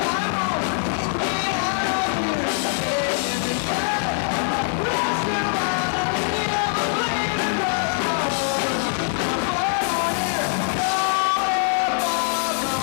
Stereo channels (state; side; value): silent; right; 64 dB below the other